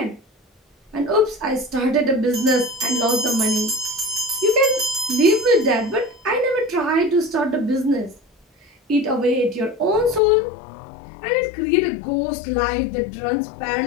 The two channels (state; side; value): drops out; right; at 10.2 s